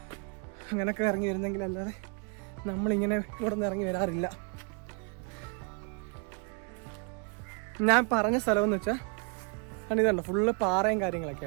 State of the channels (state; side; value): quieter; left; 36.8 dB